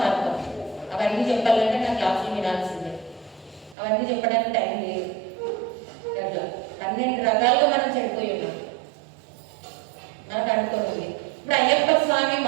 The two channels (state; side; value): drops out; left; at 3.8 s